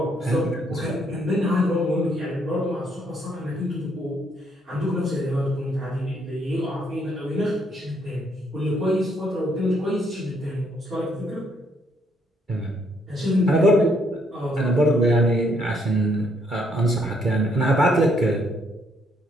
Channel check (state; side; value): normal; both; correlation 0.71